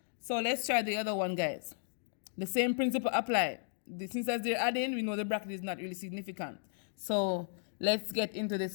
So let's try the other one, guys. The same principle applied. Since as they're adding, we know the bracket is not really significant. So let's get into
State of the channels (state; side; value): silent; right; digital silence